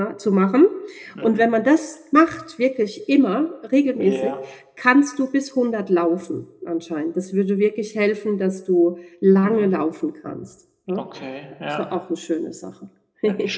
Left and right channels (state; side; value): identical; both; correlation 1.00